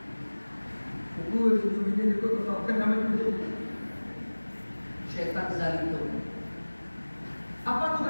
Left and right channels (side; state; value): both; inverted; correlation -1.00